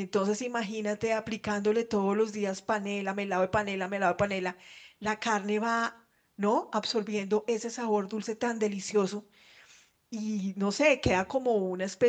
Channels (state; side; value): identical; both; correlation 1.00